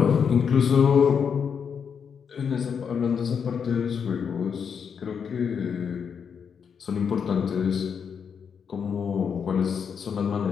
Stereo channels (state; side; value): quieter; right; 6.9 dB